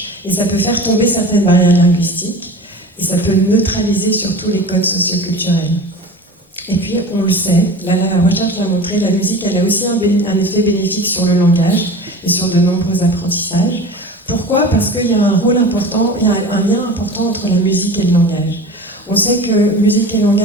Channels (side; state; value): both; normal; correlation 0.36